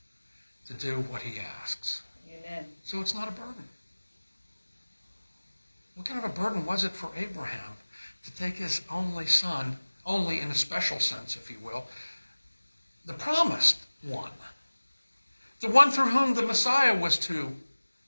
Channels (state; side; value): inverted; both; correlation -1.00